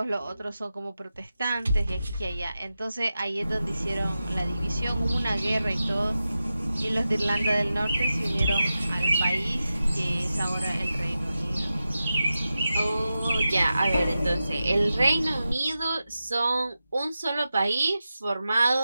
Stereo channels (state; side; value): inverted; both; correlation -0.92